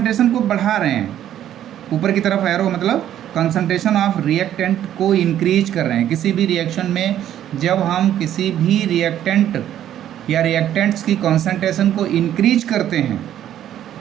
को बढ़ा रहे हैं, ऊपर की तरफ एरो मतलब कंसंट्रेशन ऑफ रिएक्टेंट को इंक्रीज कर रहे हैं। किसी भी रिएक्शन में जब हम किसी भी रिएक्टेंट या रिएक्टेंट्स की कंसंट्रेशन को इंक्रीज करते हैं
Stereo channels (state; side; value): quieter; left; 11.2 dB